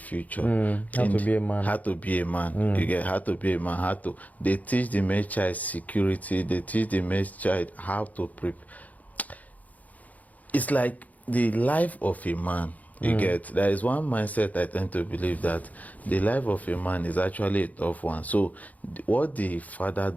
How to be a man. How to be a man. You get how to be a man. They teach the male child security. They teach the male child how to prepare. It's like the life of a man. You get, there is one mindset I tend to believe that the life of a man is actually a tough one. So what the father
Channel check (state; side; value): late; right; 0.076 ms